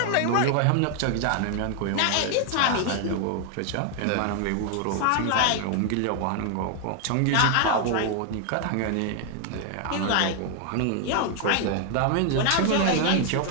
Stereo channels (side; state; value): both; different; correlation 0.00